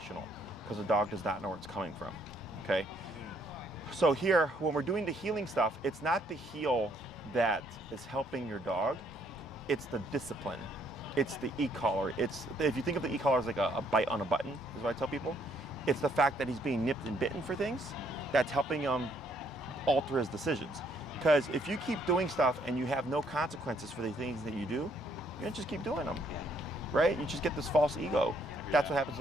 because the dog does not know where it's coming from, okay? So here, when we're doing the healing stuff, it's not the heel that is helping your dog, it's the discipline. It's the e-collar. If you think of the e-collar as like a bite on a button, is what I tell people. It's the fact that he's being nipped and bitten for things that's helping him alter his decisions. Because if you keep doing stuff and you have no consequences for the things that you do, you're gonna just keep doing them, right? You just get this false ego. That's what happens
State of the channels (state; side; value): normal; both; correlation 0.68